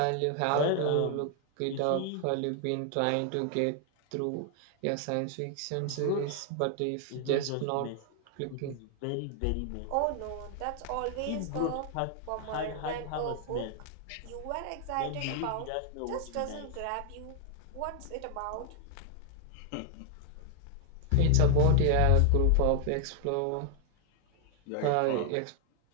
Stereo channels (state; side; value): different; both; correlation 0.00